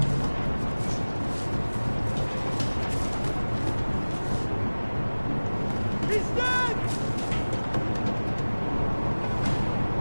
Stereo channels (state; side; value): inverted; both; correlation -1.00